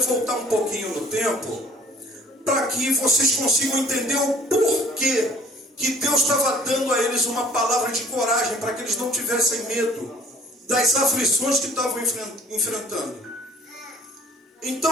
um pouquinho no tempo, para que vocês consigam entender o porquê que Deus estava dando a eles uma palavra de coragem, para que eles não tivessem medo das aflições que estavam enfrentando.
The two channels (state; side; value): normal; both; correlation 0.53